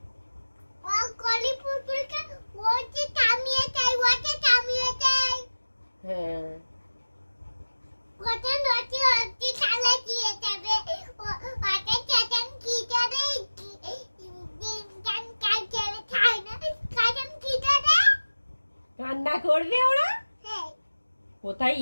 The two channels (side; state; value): both; inverted; correlation -1.00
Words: হ্যাঁ, কান্না করবে ওরা। কোথায়